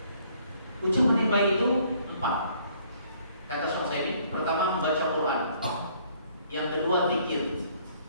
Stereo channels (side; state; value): both; inverted; correlation -0.62